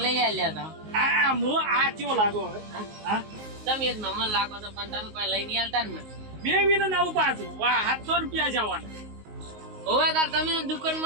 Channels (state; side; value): late; left; 19 ms